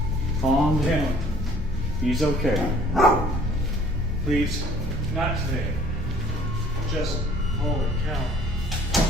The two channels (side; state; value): both; normal; correlation 0.55